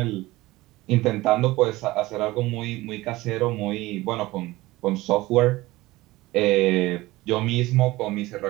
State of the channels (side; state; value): left; quieter; 19.0 dB